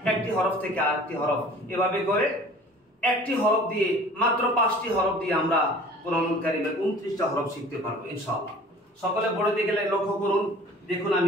একটি হরফ থেকে আরেকটি হরফ, এভাবে করে একটি হরফ দিয়ে, মাত্র 5টি হরফ দিয়ে আমরা কোরআনুল কারীমের 29টা হরফ শিখতে পারবো ইনশাআল্লাহ। সকলে পড়ে দিকে লক্ষ্য করুন, দেখুন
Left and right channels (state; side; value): normal; both; correlation 0.47